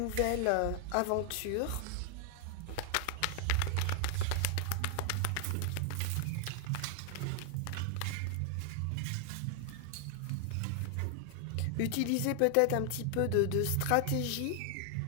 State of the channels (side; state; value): both; different; correlation 0.00